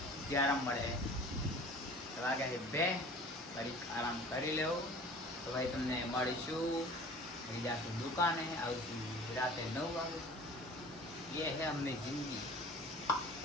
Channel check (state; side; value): normal; both; correlation 0.44